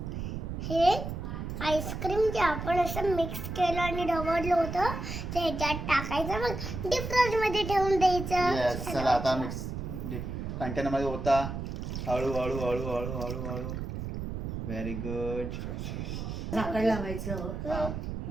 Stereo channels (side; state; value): right; noise; rumble, 5 dB below the sound